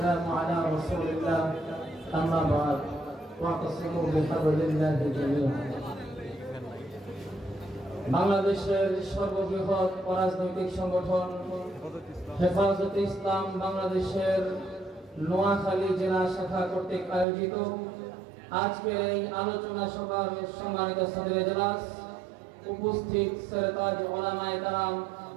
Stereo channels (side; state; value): left; drops out; at 17.2 s